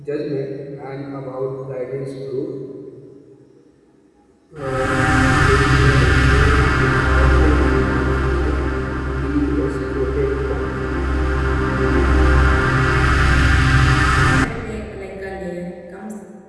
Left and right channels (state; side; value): identical; both; correlation 1.00